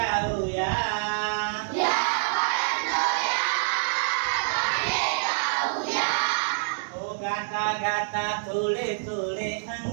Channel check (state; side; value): silent; left; 61 dB below the other